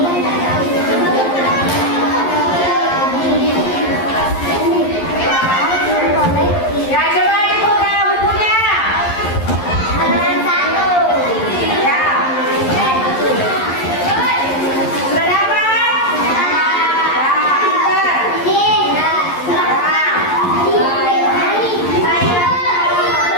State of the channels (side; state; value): right; late; 11 ms